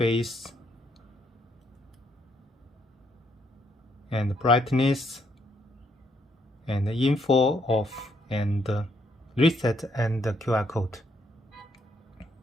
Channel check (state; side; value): normal; both; correlation 0.73